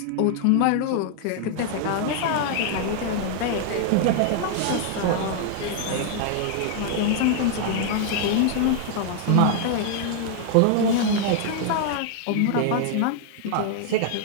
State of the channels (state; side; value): different; both; correlation 0.00